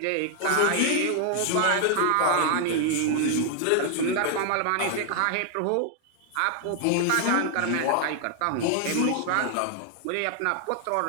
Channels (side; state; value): both; different; correlation 0.00